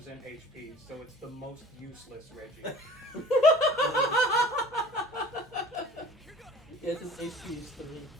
HP, so it's the most useless Reggie. Yeah, it's his HP is 3.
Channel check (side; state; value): both; normal; correlation 0.45